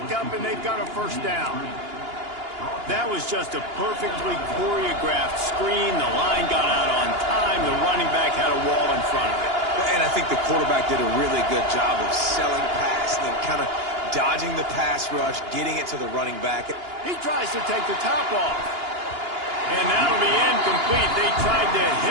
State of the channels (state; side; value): late; left; 2.9 ms